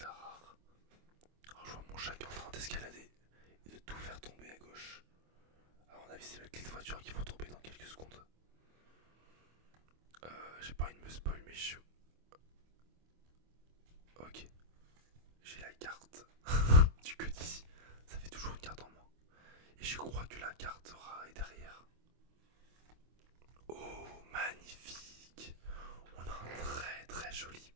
rare. Alors, je vois mon chat qui est en train d'escalader et de tout faire tomber à gauche. À mon avis, c'est mes clés de voiture qui vont tomber dans quelques secondes. J'ai pas envie de me spoil, mais je. Ok. J'ai la carte du que d'ici. Ça fait toujours une carte en moins. Et je crois que la carte rare est derrière. Oh, magnifique. On a un très joli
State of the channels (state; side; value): late; left; 25 ms